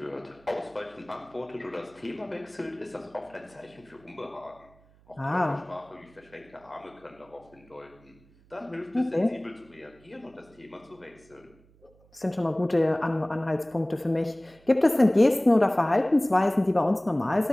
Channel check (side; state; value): right; noise; hum, 29 dB below the sound